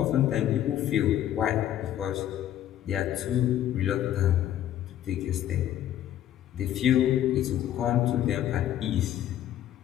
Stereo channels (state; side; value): quieter; right; 11.8 dB